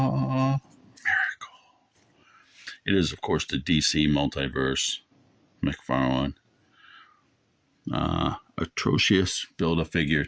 It is, of course, the DC Multiverse, McFarlane, atrocious Build-A-Figure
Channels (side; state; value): both; identical; correlation 1.00